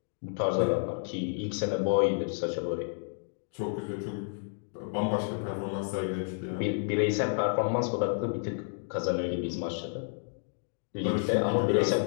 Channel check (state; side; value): silent; right; digital silence